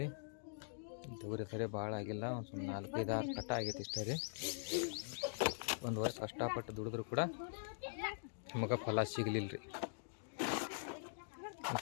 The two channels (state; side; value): silent; right; digital silence